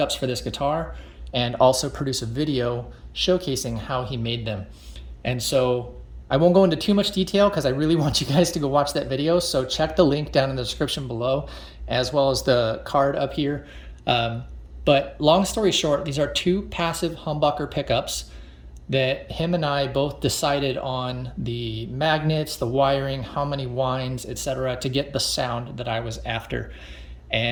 guitar and also produce a video showcasing how he made them. And so I won't go into too much detail because I really want you guys to go watch that video. So check the link down in the description below, as well as the card up here. But long story short, these are two passive humbucker pickups that him and I both decided on the magnets, the wiring, how many winds, etc., to get the sound that I was after.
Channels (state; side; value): identical; both; correlation 1.00